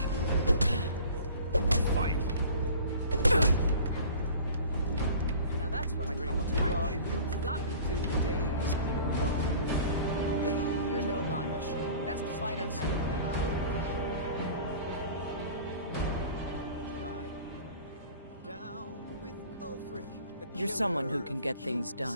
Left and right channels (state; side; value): inverted; both; correlation -0.45